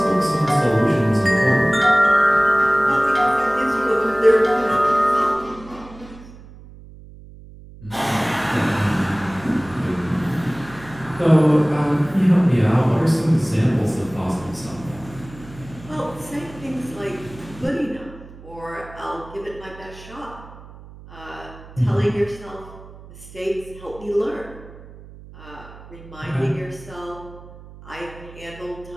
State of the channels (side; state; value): right; noise; hum, 19 dB below the sound